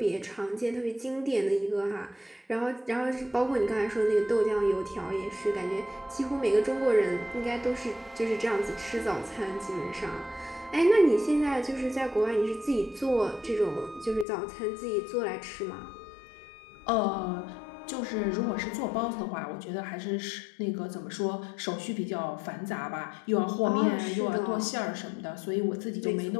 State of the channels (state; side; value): drops out; right; at 14.2 s